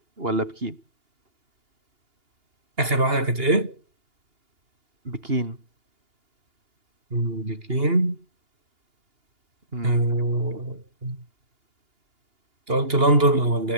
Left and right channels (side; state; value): left; late; 2.8 ms